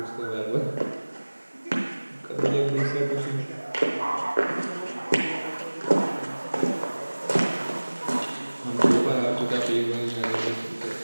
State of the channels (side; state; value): both; inverted; correlation -1.00